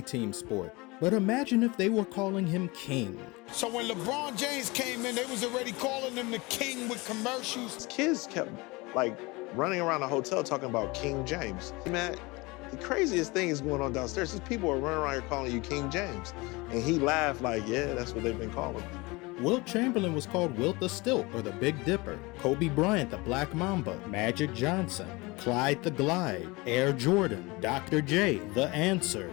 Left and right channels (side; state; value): right; quieter; 24.3 dB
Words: team sport. But imagine if they were calling him king. So when LeBron James came in, they was already calling him the king with commercials. Kids kept like running around the hotel talking about King James. Man, the craziest thing is going on downstairs is people are running around here calling you King James. And he laughed like, yeah, that's what they've been calling me. Wilt Chamberlain was called Wilt the Stilt or the Big Dipper. Kobe Bryant the Black Mamba. Magic Johnson. Clyde the Glide. Air Jordan. Dr. J. The Answer.